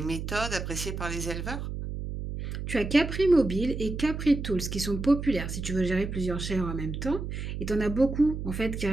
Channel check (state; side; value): noise; right; hum, 5 dB below the sound